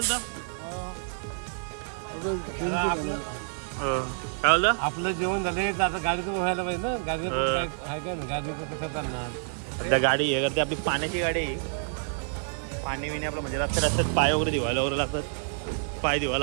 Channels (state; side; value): silent; left; digital silence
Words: काय बोलता? आपलं जेवण झालं आता गाडीचं व्हायला पाहिजे ना. गाडीचं कसं चालणार. सध्या गाडी हे करते आपली पाण्याची गाडी आहे. पाणी विणे आपलं म्हणजे रस्त्यात पाय वगैरे धुवायला वगैरे लागतात. पाय